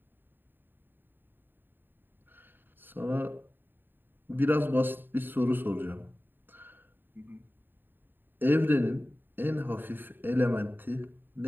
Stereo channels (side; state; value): left; late; 0.094 ms